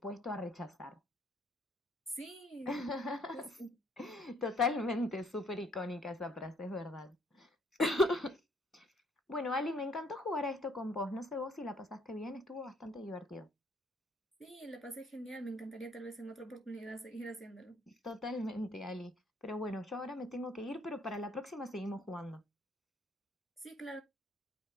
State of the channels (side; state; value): both; normal; correlation 0.64